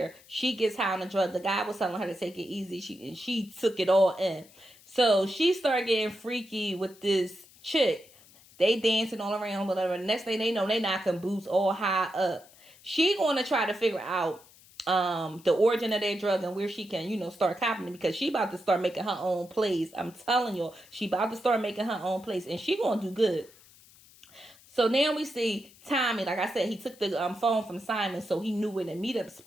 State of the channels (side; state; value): left; noise; hiss, 25 dB below the sound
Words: She gets high on the drug. The guy was telling her to take it easy. She took it all in. So she started getting freaky with this chick. They dancing all around, whatever. Next thing they know, they knocking boots all high up. She gonna try to figure out the origin of their drug and where she can, start copying it, because she about to start making her own plays. I'm telling you, she about to start making her own plays, and she gonna do good. So now we see Tommy. Like I said, he took the phone from Simon, so he knew where the meetup